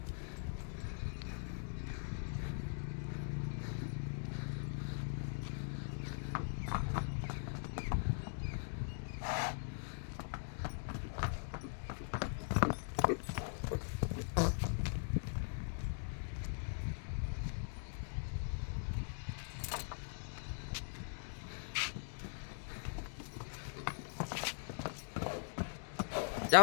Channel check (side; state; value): right; silent; digital silence